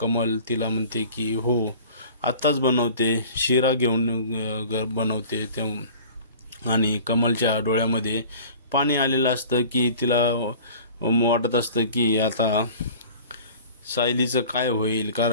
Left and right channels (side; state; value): both; inverted; correlation -0.44